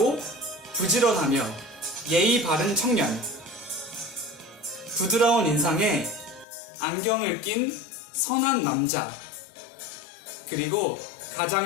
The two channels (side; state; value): right; drops out; at 6.5 s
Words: 부지런하며 예의 바른 청년, 부드러운 인상에 안경을 낀 선한 남자, 그리고